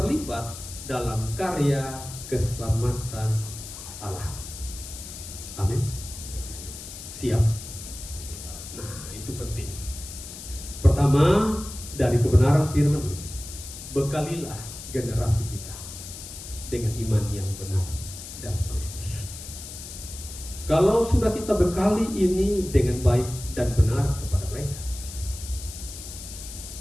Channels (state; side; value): noise; left; hiss, 12 dB below the sound